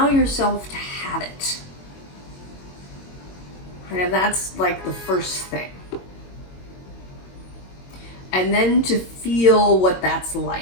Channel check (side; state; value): right; late; 22 ms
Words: yourself to have it. And that's like the first thing. And then to feel what that's like.